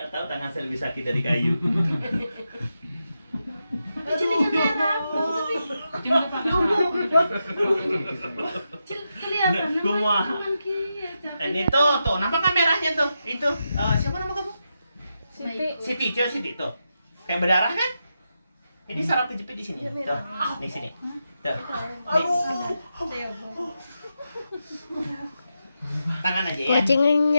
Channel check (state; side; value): inverted; both; correlation -0.87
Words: tahu tangan saya lebih sakit dari kayu. Jadi merah. Cuma pakai Kelihatan. Kumah. Ini tuh, nampak kan merahnya tuh? Itu siapa nama kamu? Siti. Siti tuh. Kayak berdarah kan? Jadi saraf kejepit di sini. Tuh, di sini. Tuh. Nih. Tangan aja ya.